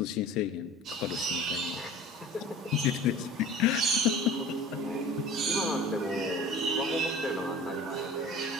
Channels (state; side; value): normal; both; correlation 0.41